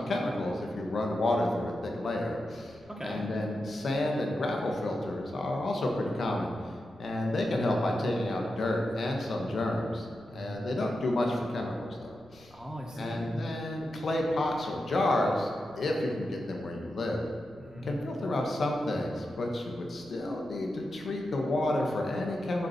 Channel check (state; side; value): noise; left; rumble, 26 dB below the sound